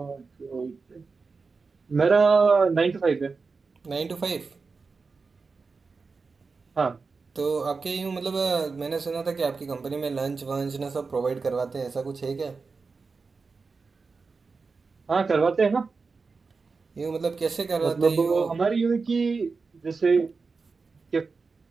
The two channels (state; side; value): quieter; left; 4.5 dB